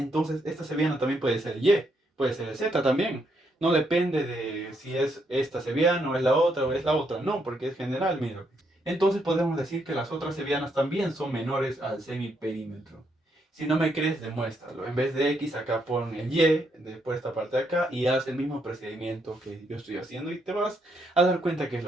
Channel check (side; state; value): both; normal; correlation 0.76